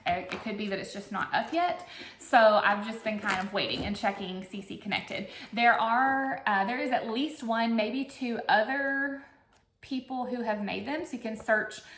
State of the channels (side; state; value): both; identical; correlation 1.00